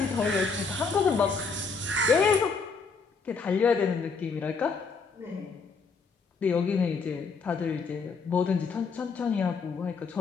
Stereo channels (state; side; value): quieter; right; 4.8 dB